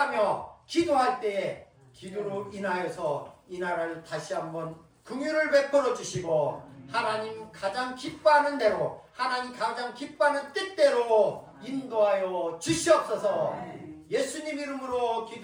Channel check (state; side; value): identical; both; correlation 1.00